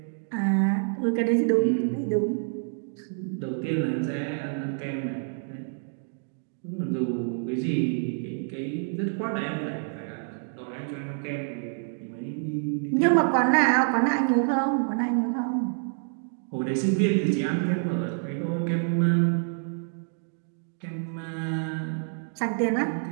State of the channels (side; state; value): left; silent; 60 dB below the other